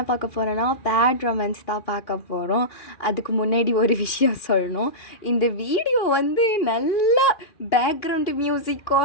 பார்க்க போகிறோன்னா பேட் ரொமான்ஸ் தான் பார்க்க போகிறோம். அதுக்கு முன்னாடி ஒரு விஷயம் சொல்லணும். இந்த வீடியோ நல்லா பேக்ரவுண்டு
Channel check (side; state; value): right; late; 2.8 ms